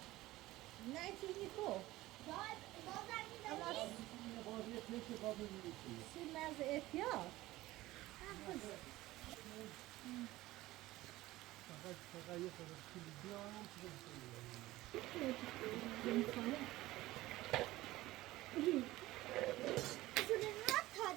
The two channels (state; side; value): quieter; left; 17.6 dB